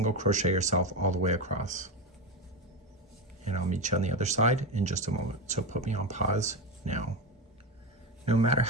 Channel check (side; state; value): both; normal; correlation 0.17